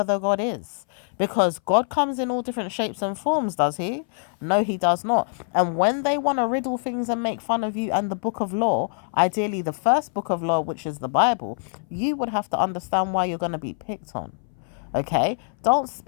the God is. Because God comes in all different shapes and forms, does he? No, he does not. And when they want to riddle things and make fun of you and the book of law, ideally the first book of law, which is the Bible, you would have to understand why you're going to be picked on. Okay, don't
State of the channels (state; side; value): silent; right; 60 dB below the other